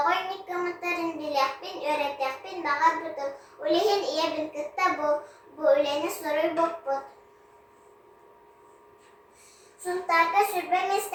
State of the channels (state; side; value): identical; both; correlation 1.00